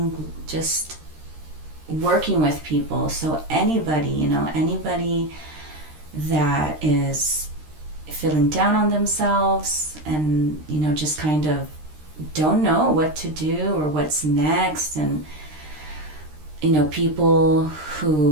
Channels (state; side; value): late; left; 13 ms